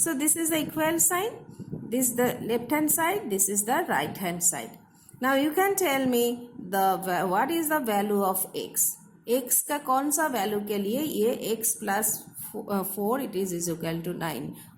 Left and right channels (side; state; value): both; identical; correlation 1.00